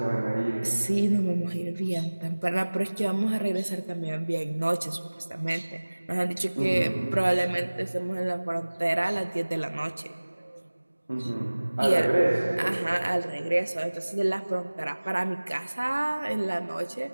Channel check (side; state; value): both; inverted; correlation -1.00